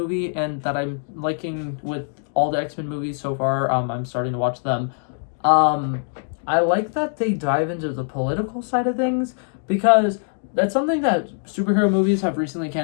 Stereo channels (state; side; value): silent; right; digital silence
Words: and that I'm liking with all the X-Men movies so far, I'm starting to watch them. I like that they dive into the political side of things, because that's something that superhero movies have recently